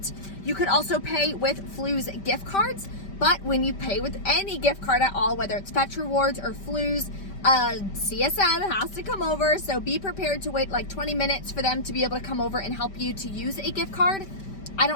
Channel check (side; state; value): right; late; 5.1 ms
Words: You could also pay with Flu's gift cards, but when you pay with any gift card at all, whether it's Fetch Rewards or Flu's, CSM has to come over. So be prepared to wait like 20 minutes for them to be able to come over and help you to use a gift card. I